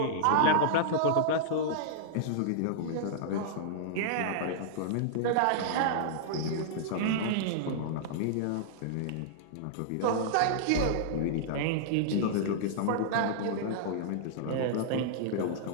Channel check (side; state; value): both; different; correlation -0.02